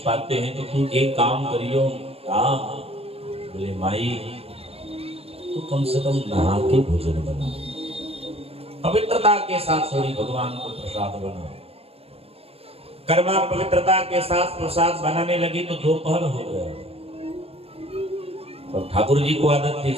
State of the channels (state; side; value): late; left; 0.28 ms